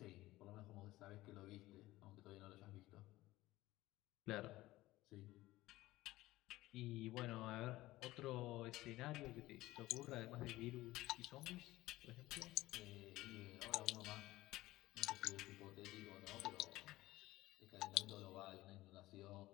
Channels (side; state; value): right; quieter; 17.5 dB